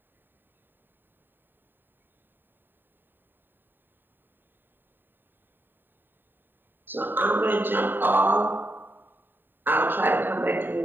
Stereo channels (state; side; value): late; left; 0.094 ms